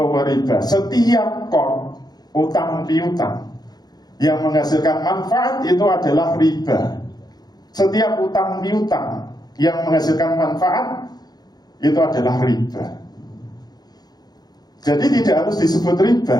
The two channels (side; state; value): right; late; 0.19 ms